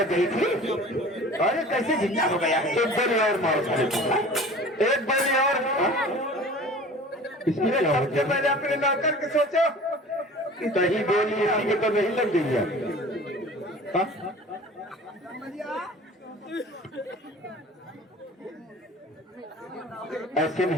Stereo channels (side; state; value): both; normal; correlation 0.42